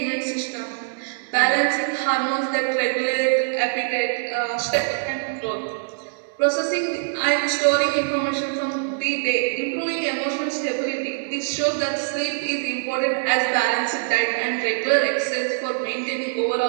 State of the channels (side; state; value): left; silent; digital silence